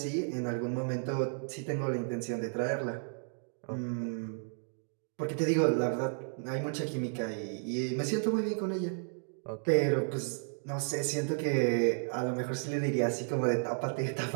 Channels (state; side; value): silent; left; digital silence